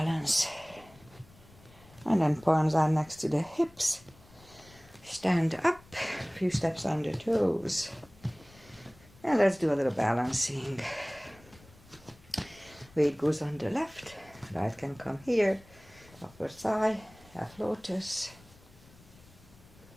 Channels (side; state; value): left; noise; rumble, 25 dB below the sound